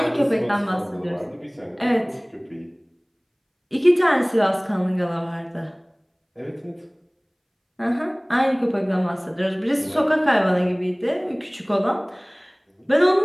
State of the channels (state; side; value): identical; both; correlation 1.00